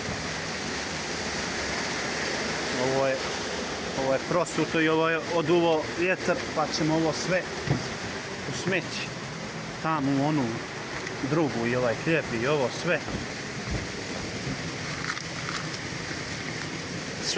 Ovo je prosuto i ovo je oduvo vjetar, pa ćemo ovo sve u smeći. Tamo u onu drugu i ovaj hljeb i ovo sve.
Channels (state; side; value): identical; both; correlation 1.00